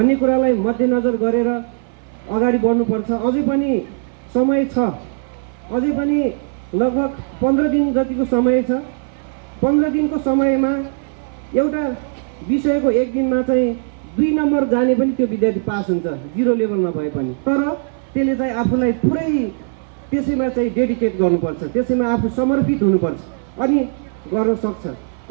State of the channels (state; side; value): silent; left; 59 dB below the other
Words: कुरालाई मध्यनजर गरेर अगाडि बढ्नुपर्छ। अझै पनि समय छ, अझै पनि लगभग 15 दिन जतिको समय छ। 15 दिनको समयमा एउटा विषयको एक दिनमा चाहिँ 2 नम्बर जाने पनि त्यो विद्यार्थी पास हुन्छ, 0 लेभलमा भए पनि। तर त्यसले चाहिँ आफूलाई पुरै त्यसैमा चाहिँ डेडिकेट गर्नुपर्छ, त्यसैमा आफू समर्पित हुनुपर्छ अनि गर्न सक्छ।